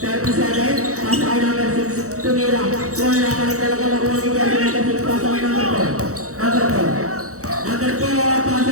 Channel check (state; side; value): late; left; 0.65 ms